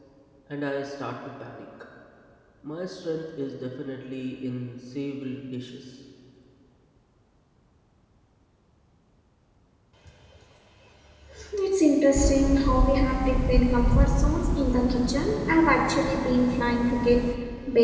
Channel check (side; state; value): both; identical; correlation 1.00